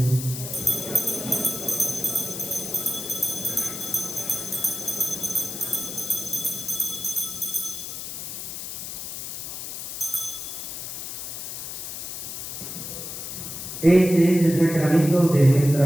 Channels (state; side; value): noise; left; hiss, 7 dB below the sound